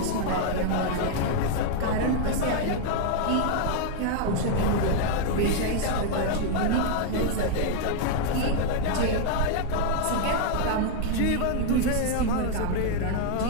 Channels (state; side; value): different; both; correlation 0.00